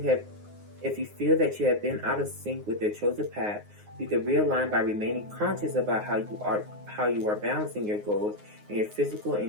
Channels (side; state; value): left; late; 9.6 ms